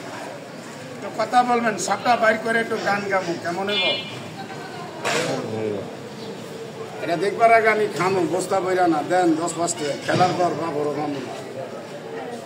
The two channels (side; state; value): both; identical; correlation 1.00